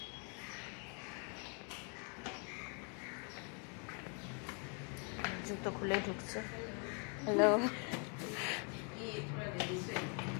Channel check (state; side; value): quieter; right; 38.2 dB